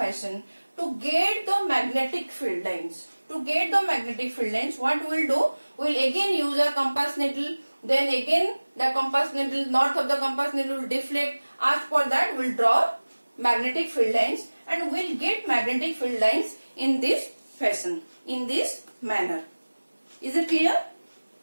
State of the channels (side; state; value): both; inverted; correlation -1.00